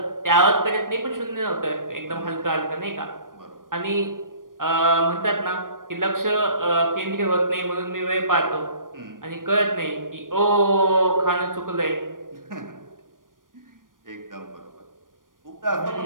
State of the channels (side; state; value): left; late; 0.90 ms